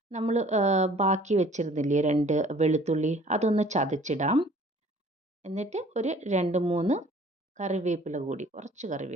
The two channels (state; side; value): normal; both; correlation 0.53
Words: നമ്മൾ ബാക്കി വെച്ചിരുന്നില്ലേ 2 വെളുത്തുള്ളി, അതൊന്ന് ചതച്ചിടാം. എന്നിട്ട് ഒരു 2-3 കറിവേപ്പില കൂടി, കുറച്ച്